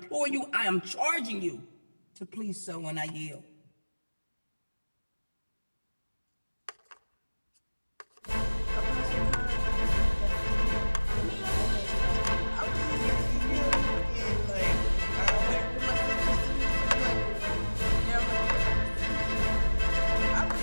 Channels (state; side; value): inverted; both; correlation -1.00